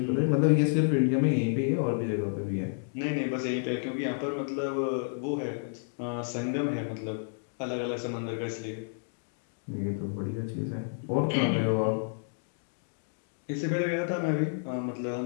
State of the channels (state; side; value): silent; right; digital silence